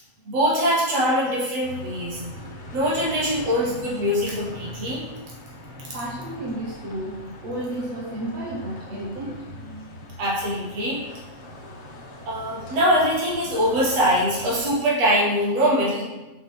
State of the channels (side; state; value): left; late; 7.8 ms